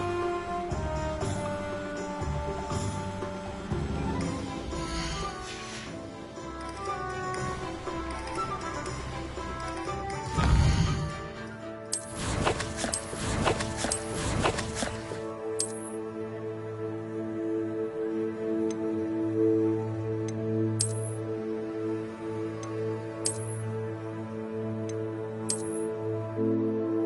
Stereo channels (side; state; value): both; identical; correlation 1.00